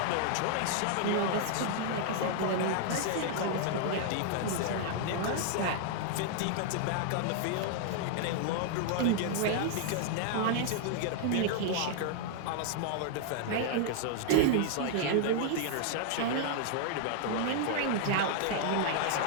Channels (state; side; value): different; both; correlation -0.01